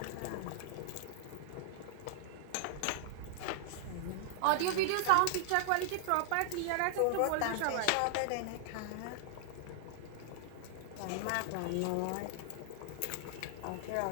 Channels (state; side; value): different; both; correlation -0.01